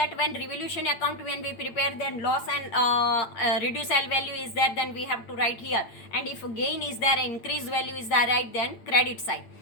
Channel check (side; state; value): right; late; 8.9 ms